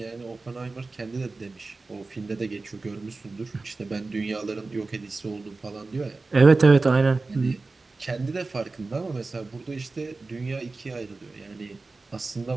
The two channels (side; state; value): left; quieter; 3.7 dB